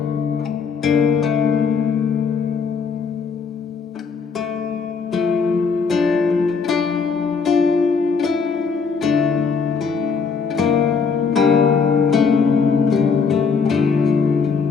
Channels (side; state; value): right; quieter; 5.4 dB